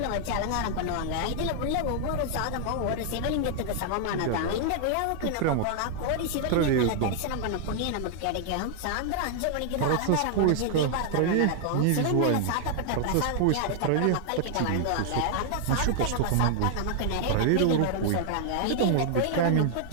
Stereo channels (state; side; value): different; both; correlation 0.00